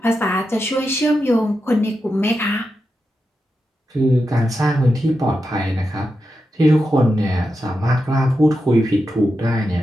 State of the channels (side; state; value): both; normal; correlation 0.88